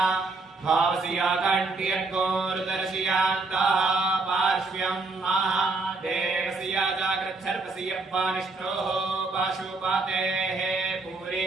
भावसिया कण्ठ्यर्गोरुदर्शयान्तः पार्श्व्यं महादेवसिया जाग्रच्छर्पसियप्पानिष्ठोः पाशुपातेः पूरे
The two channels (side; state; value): left; quieter; 3.6 dB